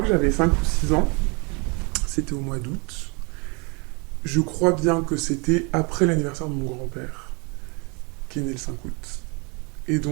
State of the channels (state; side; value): quieter; left; 31.1 dB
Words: que j'avais 5 ou 6 ans, c'était au mois d'août. Je crois bien que c'était après l'anniversaire de mon grand-père, qui est né le 5 août. Et